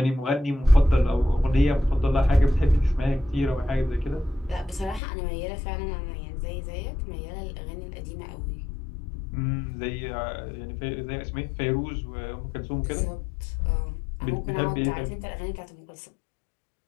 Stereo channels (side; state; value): right; drops out; at 5.0 s